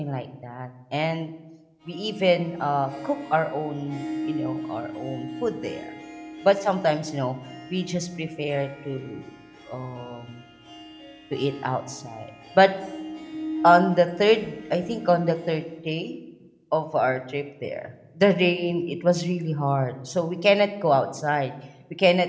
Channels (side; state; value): both; identical; correlation 1.00